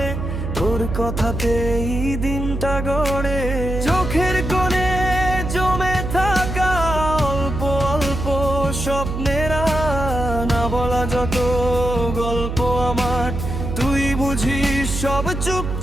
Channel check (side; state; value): right; noise; hum, 4 dB below the sound